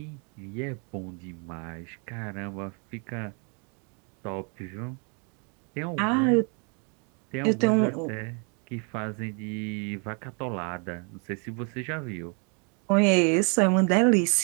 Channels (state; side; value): quieter; left; 36.7 dB